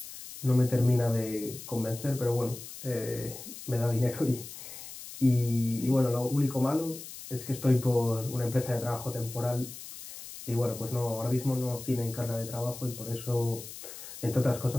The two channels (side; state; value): left; noise; hiss, 13 dB below the sound